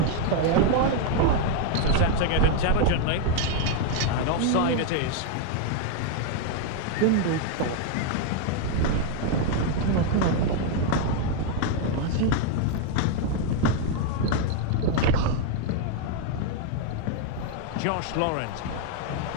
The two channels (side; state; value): both; different; correlation 0.01